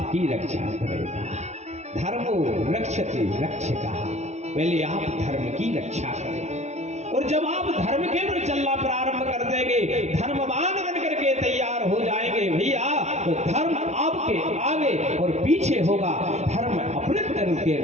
रक्षा करेगा। धर्मो रक्षते रक्षकः, पहले आप धर्म की रक्षा करें। और जब आप धर्म के ऊपर चलना प्रारंभ कर देंगे, धर्मवान बन करके तैयार हो जाएंगे भैया, तो धर्म आपके आगे और पीछे होगा। धर्म अपने धर्म के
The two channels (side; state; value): left; late; 0.32 ms